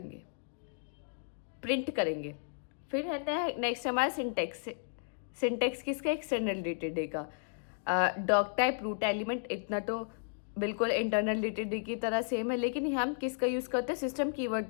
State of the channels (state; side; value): silent; right; digital silence